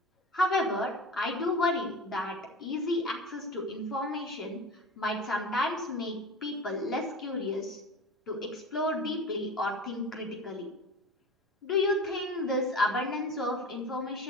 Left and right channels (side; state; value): both; normal; correlation 0.34